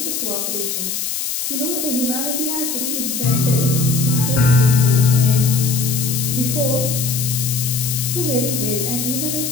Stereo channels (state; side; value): noise; left; hiss, 3 dB below the sound